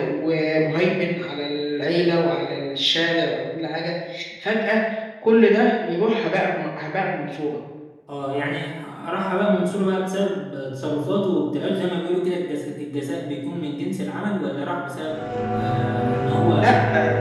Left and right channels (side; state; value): both; identical; correlation 1.00